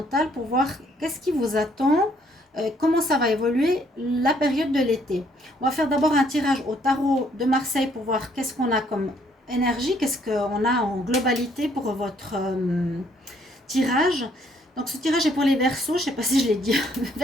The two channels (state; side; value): normal; both; correlation 0.66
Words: pour voir qu'est-ce qui vous attend, comment ça va évoluer la période de l'été. On va faire d'abord un tirage au tarot de Marseille pour voir qu'est-ce qu'on a comme énergie, qu'est-ce qu'on a en globalité pour votre tirage. Donc ce tirage est pour les Verseaux, je ne sais pas si je l'ai dit,